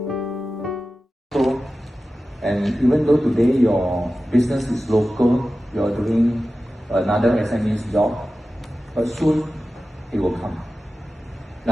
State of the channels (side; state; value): both; normal; correlation 0.94